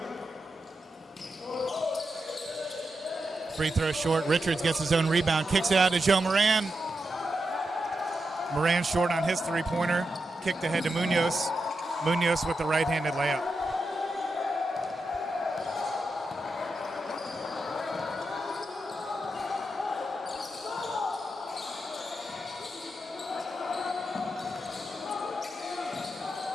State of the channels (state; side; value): normal; both; correlation 0.87